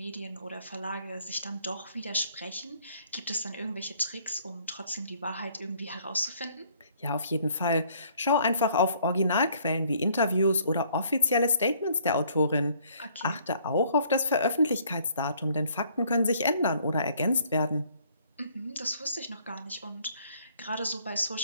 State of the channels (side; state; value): both; inverted; correlation -0.62